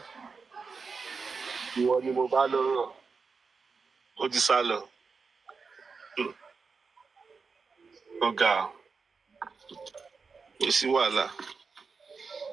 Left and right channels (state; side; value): quieter; left; 4.9 dB